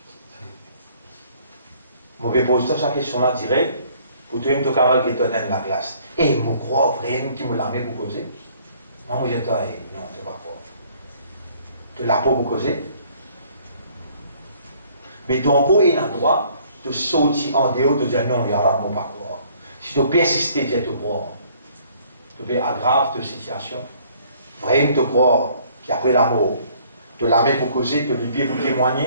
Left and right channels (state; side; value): inverted; both; correlation -0.59